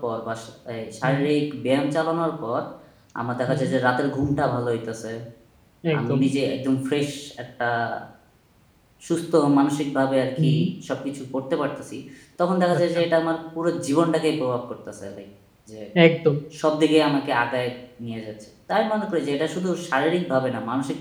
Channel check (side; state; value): both; identical; correlation 1.00